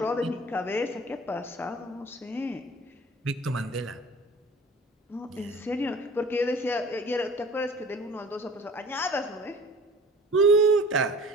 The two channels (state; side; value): normal; both; correlation 0.45